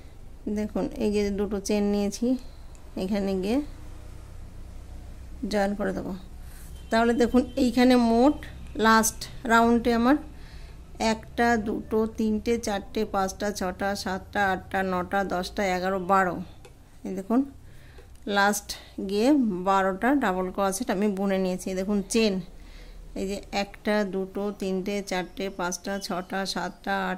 দেখুন এই যে দুটো চেন নিয়েছি, এখানে গিয়ে জয়েন করে দেবো। তাহলে দেখুন এইখানে মোট লাস্ট রাউন্ডে আমার 1টা 2টো 3টে 4টে 5টা 6টা 7টা 8টা 9টা 10টা 11 12। এই দেখুন লাস্ট গিয়ে 12টা ডাবল ক্রোশেট আমি বুনে নিয়েছি। দেখুন চেন এই যে 1টা 2টো 3টে 4টে 5টা 6টা 7টা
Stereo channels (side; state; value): both; identical; correlation 1.00